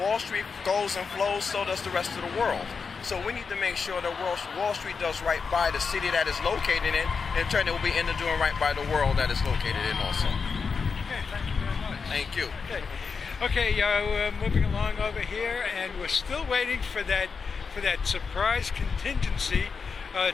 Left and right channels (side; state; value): right; quieter; 5.3 dB